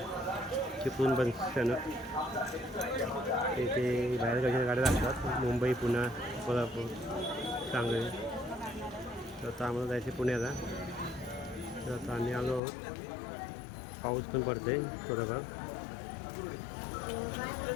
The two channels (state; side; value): drops out; right; at 12.6 s